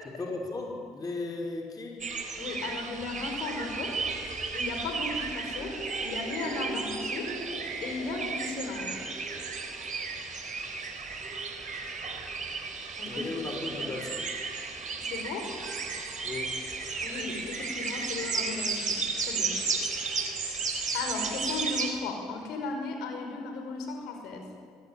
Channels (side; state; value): both; normal; correlation 0.49